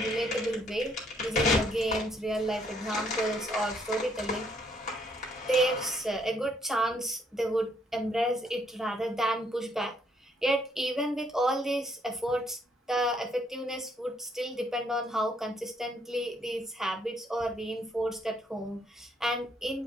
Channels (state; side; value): normal; both; correlation 0.69